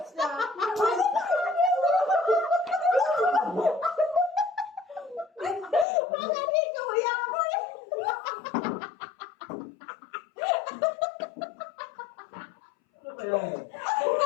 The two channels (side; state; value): right; drops out; at 5.9 s